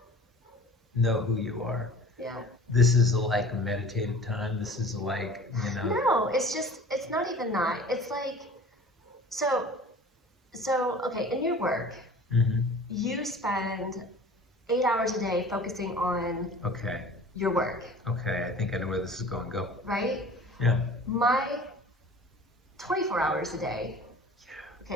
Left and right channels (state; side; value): normal; both; correlation 0.44